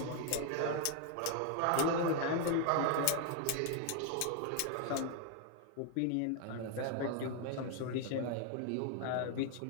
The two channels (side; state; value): both; different; correlation 0.00